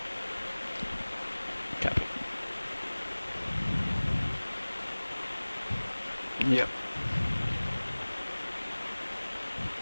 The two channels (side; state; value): both; inverted; correlation -1.00